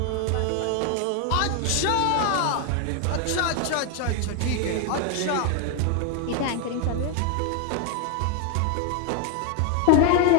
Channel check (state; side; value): different; both; correlation 0.01